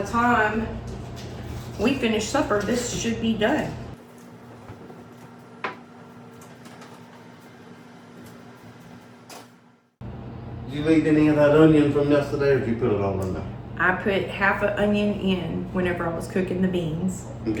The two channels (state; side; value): identical; both; correlation 1.00